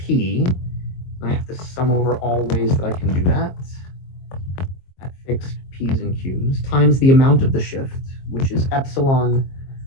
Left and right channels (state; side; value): late; right; 22 ms